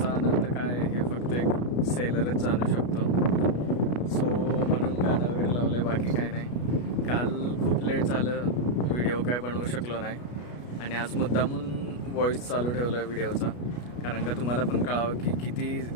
आनंद काय हे फक्त एक सेलरच जाणू शकतो. सो म्हणून गाणं वगैरे लावलं आहे, बाकी काय नाही. काल खूप लेट झालं, व्हिडिओ काय बनवू शकलो नाही आणि आज मुद्दामून व्हॉईस चालू ठेवला आहे व्हिडिओचा, कारण का तुम्हाला पण कळावं की किती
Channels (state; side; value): late; right; 33 ms